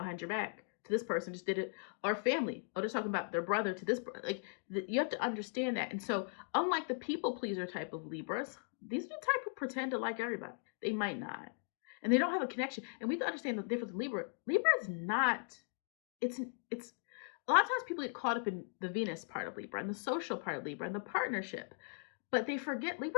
your back. To this person just did it, or family. Oh, they're talking about their brother to this. Like, you have to understand that. And so, unlike the people pleaser type of Libras, these are the type who pretend to like everybody. They might not, and they don't have a connection. And we have to understand the difference in Libra. Libra is not. It's a lot of times people get caught up in the Venus part of Libra and the social part of Libra and the partnership. But they forget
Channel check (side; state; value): right; silent; 52 dB below the other